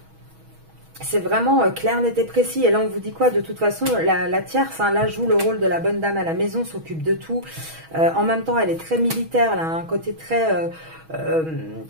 c'est vraiment clair, net et précis. Et là, on vous dit quoi? De toute façon, la tierce, hein, là, joue le rôle de la bonne dame à la maison, s'occupe de tout. En même temps, elle est très militaire, elle a un côté très,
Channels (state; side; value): late; left; 6.2 ms